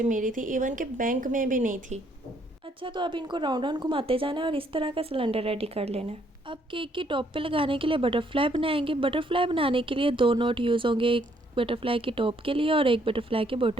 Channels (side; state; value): both; normal; correlation 0.68